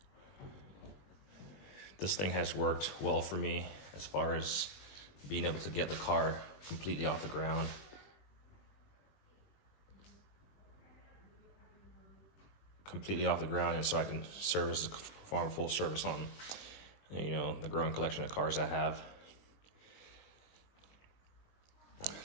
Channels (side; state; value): right; late; 20 ms